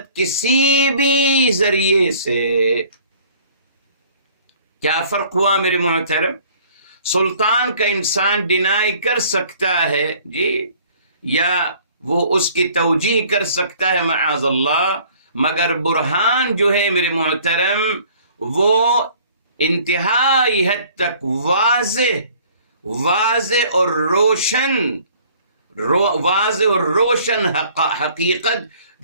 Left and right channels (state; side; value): inverted; both; correlation -0.54